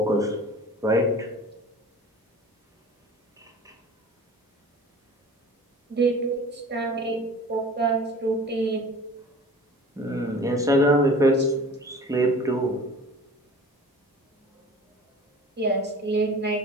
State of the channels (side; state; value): both; normal; correlation 0.42